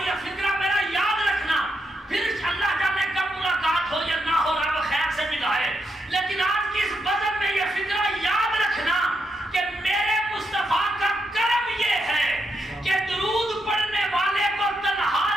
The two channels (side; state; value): both; normal; correlation 0.81